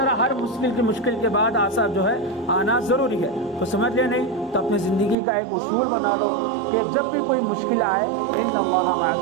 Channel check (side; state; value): left; drops out; at 5.2 s